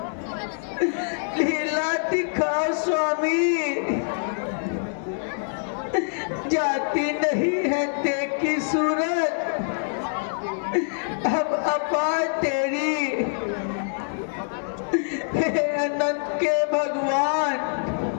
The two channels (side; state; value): right; silent; 62 dB below the other